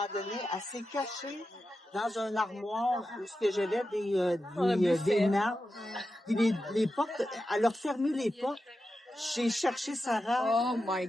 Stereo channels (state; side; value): normal; both; correlation 0.90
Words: donné, elle s'est cachée dans un armoire où j'avais des nappes. Puis les portes, elle a fermé les portes. J'ai cherché Sarah. Oh my